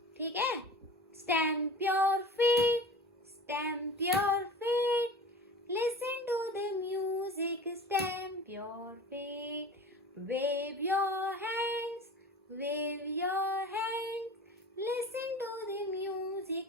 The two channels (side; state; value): both; normal; correlation 0.37